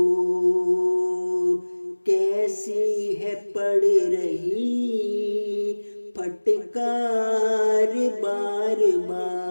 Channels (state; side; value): inverted; both; correlation -1.00